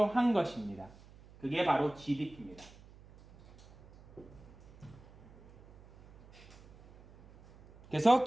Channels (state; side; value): noise; right; hum, 23 dB below the sound